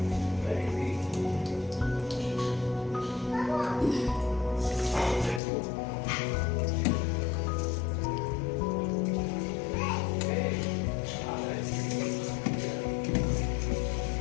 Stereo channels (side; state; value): right; drops out; at 5.4 s